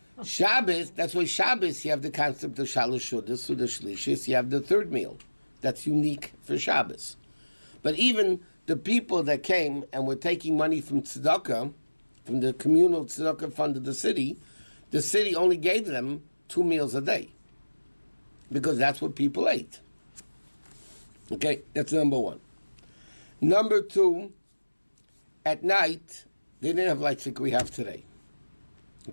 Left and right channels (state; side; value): inverted; both; correlation -1.00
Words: Shabbos, that's why Shabbos, you have the concept of Shalosh Shudas, Suda Shlishis, you have the 3rd meal. That's unique for Shabbos. But even the people that came and were taking money from tzedakah, from the communal tzedakah fund of the city only gave them 2 meals a day. Because that's what people ate. Okay, that's number 1. Number 2, at night, they didn't have lights like we have today.